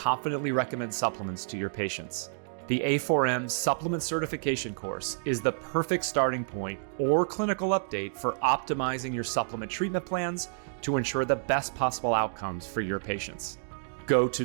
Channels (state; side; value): silent; left; digital silence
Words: recommend supplements to your patients. The A4M Supplement Certification course is the perfect starting point or clinical update for optimizing your supplement treatment plans to ensure the best possible outcomes for your patients. Go to